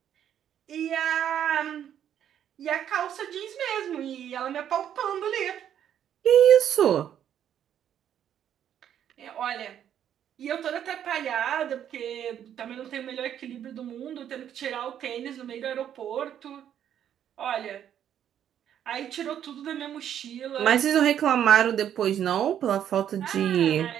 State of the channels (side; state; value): left; quieter; 9.9 dB